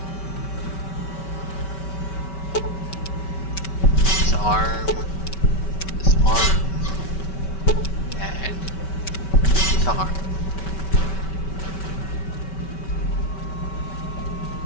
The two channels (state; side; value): late; right; 5.2 ms